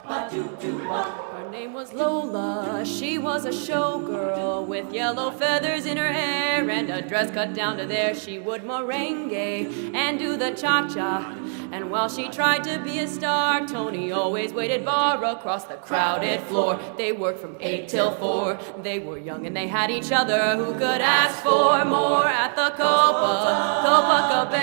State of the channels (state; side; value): silent; left; 58 dB below the other